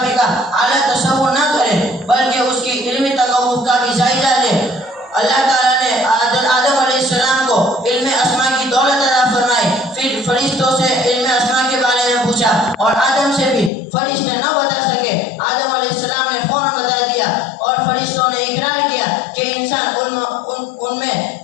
کا اعلیٰ تصور نہ کرے بلکہ اس کی علمی تقوف کا بھی جائزہ لے. اللہ تعالیٰ نے آدم علیہ السلام کو علم اسماء کی دولت عطا فرمائی. پھر فرشتوں سے علم اسماء کے بارے میں پوچھا اور آدم سے بھی فرشتے نہ بتا سکے. آدم علیہ السلام نے فوراً بتا دیا اور فرشتوں نے اقرار کیا کہ انسان ان میں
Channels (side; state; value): right; drops out; at 13.7 s